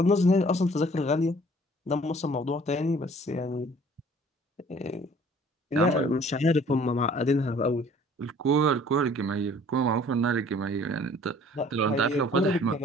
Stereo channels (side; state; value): both; normal; correlation 0.54